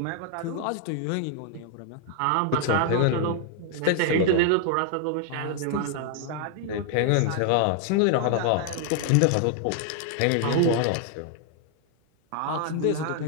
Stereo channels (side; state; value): both; different; correlation 0.00